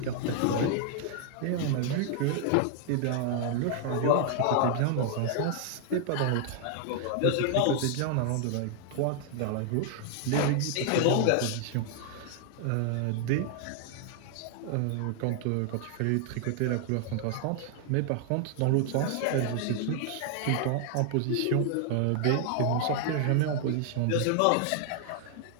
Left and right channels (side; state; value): both; different; correlation 0.00